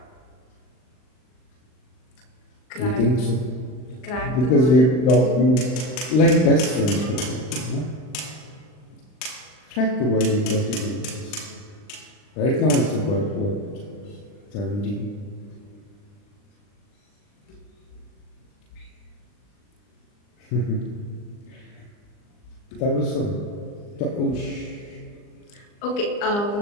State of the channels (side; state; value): right; late; 39 ms